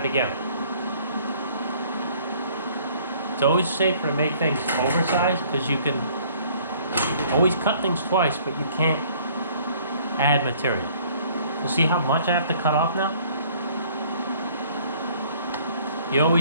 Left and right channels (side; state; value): both; inverted; correlation -0.57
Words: again. It's always safer to make things oversized because you can always cut things twice, but you can't add material. You see how much I have to cut off now? You